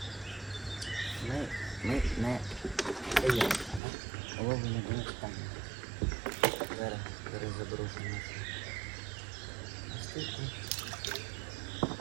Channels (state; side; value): drops out; left; at 3.8 s